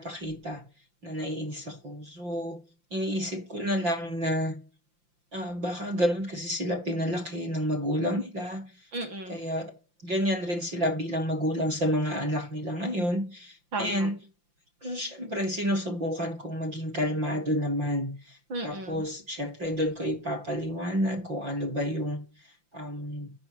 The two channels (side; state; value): left; late; 5.8 ms